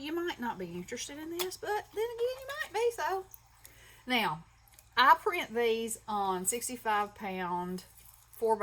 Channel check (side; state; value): both; identical; correlation 1.00